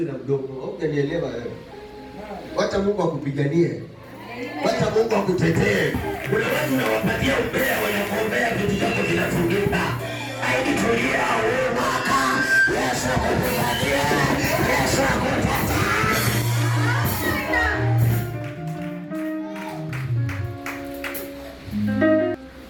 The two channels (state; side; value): identical; both; correlation 1.00